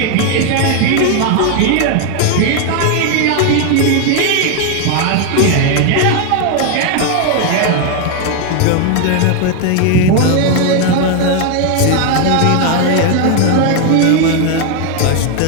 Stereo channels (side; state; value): both; different; correlation 0.01